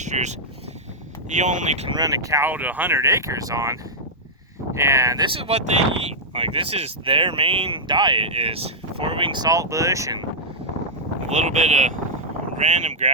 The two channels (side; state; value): both; normal; correlation -0.07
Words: you only can run a cow to 100 acres on. And this is what they eat. Like, this is their main diet, is 4-wing saltbush and a little bit of random